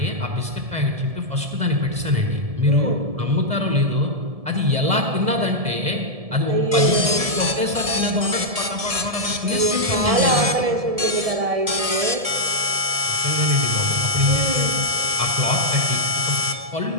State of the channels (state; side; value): late; left; 1.7 ms